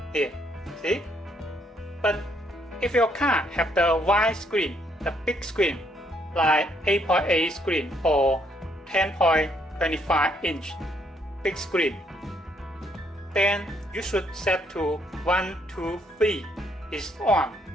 Here, see? But if your car have the wide screen, the big screen, like 8.8 screen or 10.25 inch big screen, then you should set to 1, 2, 3 is on,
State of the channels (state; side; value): normal; both; correlation 0.70